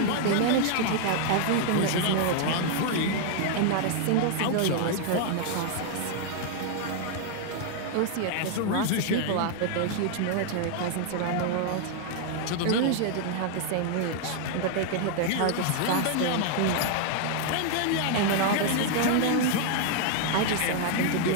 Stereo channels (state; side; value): different; both; correlation 0.00